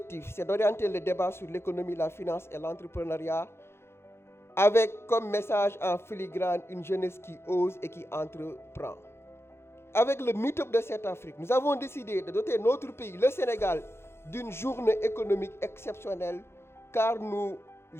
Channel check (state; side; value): late; right; 0.12 ms